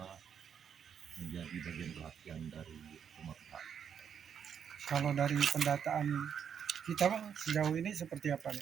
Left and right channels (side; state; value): left; quieter; 7.9 dB